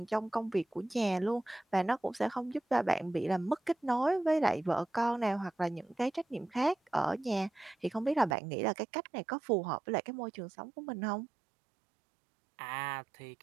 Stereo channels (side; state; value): left; drops out; at 8.3 s